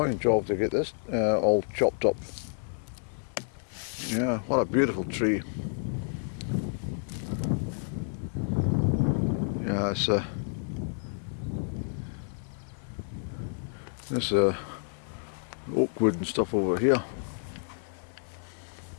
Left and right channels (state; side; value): silent; right; 57 dB below the other